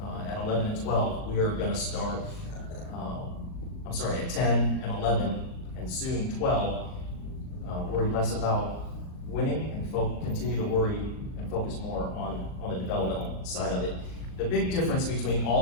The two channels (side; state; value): right; late; 38 ms